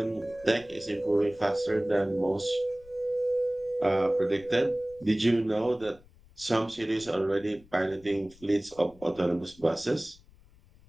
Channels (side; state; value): left; noise; rumble, 25 dB below the sound